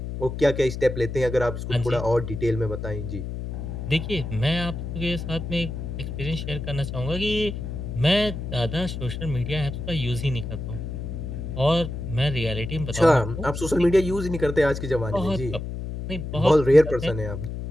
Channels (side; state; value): left; noise; hum, 6 dB below the sound